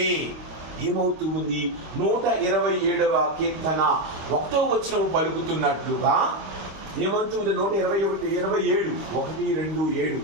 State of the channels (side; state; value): left; late; 25 ms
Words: ఏమవుతుంది? 127వ కీర్తన 1వ వచనం పలుకుతున్నట్లుగా ఏమంటుంది? 127